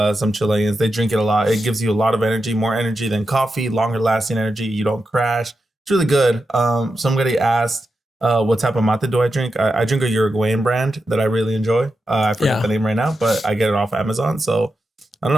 some Chileans. They drink it a lot. It gives you a lot of energy, more energy than coffee, longer lasting energy. You don't crash. It's really good. Somebody asked, what type of mate do I drink? I drink a Uruguayan brand that I really enjoy. I forget the name right now, but I get it off Amazon. So I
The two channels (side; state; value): both; normal; correlation 0.89